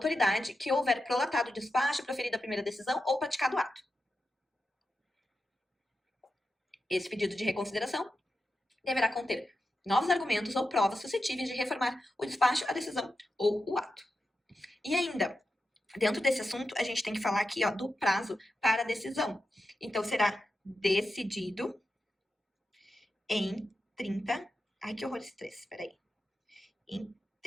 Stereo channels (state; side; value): normal; both; correlation 0.90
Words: que houver prolatado o despacho, proferido a primeira decisão ou praticado o ato. Esse pedido de reconsideração deverá conter novos argumentos ou provas suscetíveis de reformar o despacho, a decisão ou o ato. E ainda, dentro desse assunto, a gente tem que falar aqui, ó, do prazo para a decisão. Então, será decidido em 30... Ai, que horror esse 3, peraí. Em